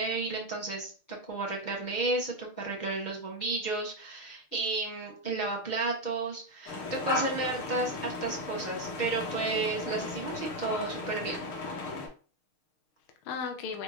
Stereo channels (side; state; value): right; late; 6.5 ms